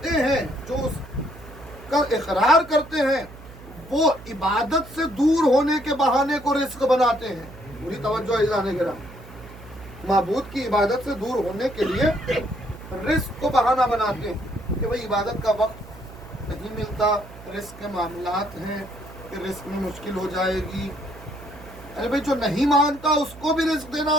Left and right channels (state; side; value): noise; right; hum, 18 dB below the sound